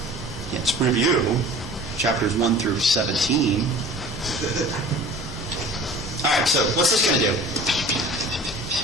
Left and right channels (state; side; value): normal; both; correlation 0.43